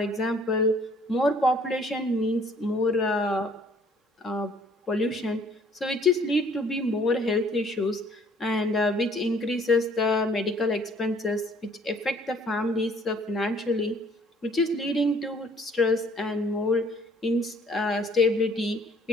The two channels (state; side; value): normal; both; correlation 0.59